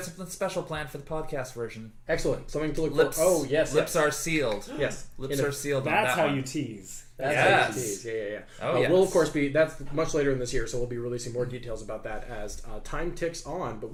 something special planned for the podcast version. Excellent. Something to look Lips. for. Oh, yes. Lips are sealed. Yes. Lips In a- are sealed. on That's that how one. you tease. That's Yes. how it is. Yeah. Oh, yes. We'll, of course, that's much later in this year, so we'll be releasing more details about that as time ticks on. But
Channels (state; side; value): identical; both; correlation 1.00